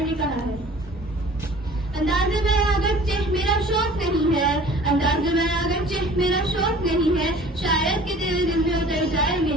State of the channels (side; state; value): both; normal; correlation 0.47